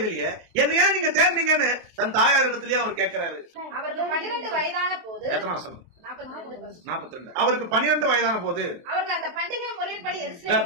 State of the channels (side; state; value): left; late; 23 ms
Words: என்ன ஏன் நீங்க தேர்ந்தீங்கன்னு தன் தாயார் இடத்துலயே அவர் கேட்கிறாரு. அவருக்கு 12 வயதான போது, எத்தனை மாசம்? 42. அவருக்கு 12 வயதான போது அவருக்கு அந்த பண்டிகை முறைப்படி